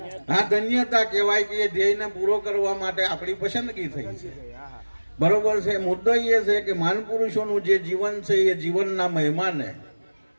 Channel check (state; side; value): inverted; both; correlation -1.00